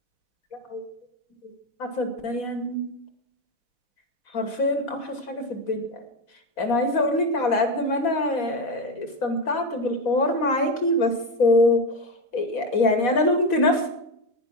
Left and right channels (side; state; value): right; late; 4.1 ms